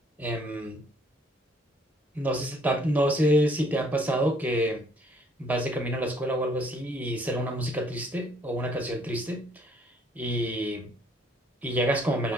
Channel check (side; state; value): both; normal; correlation 0.62